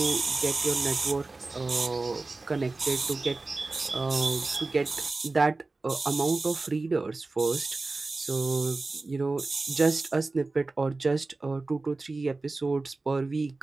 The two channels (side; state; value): left; quieter; 3.4 dB